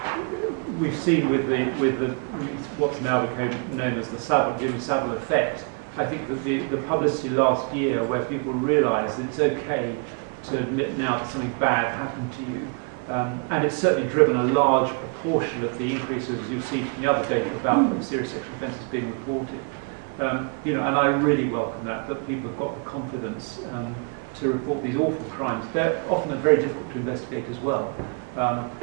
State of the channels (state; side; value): quieter; left; 37.2 dB